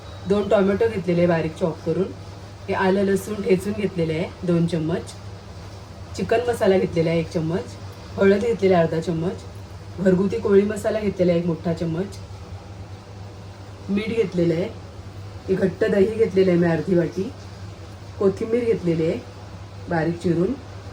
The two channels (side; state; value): both; identical; correlation 1.00